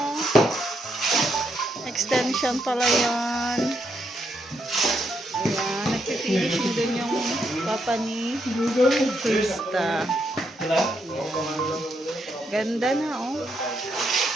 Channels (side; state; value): both; normal; correlation 0.78